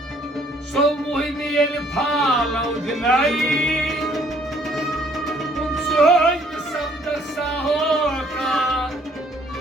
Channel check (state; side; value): normal; both; correlation 0.62